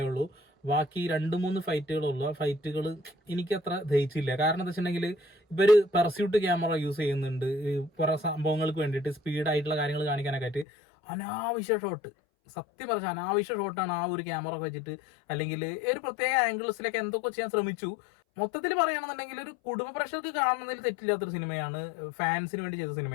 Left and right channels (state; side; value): drops out; right; at 10.7 s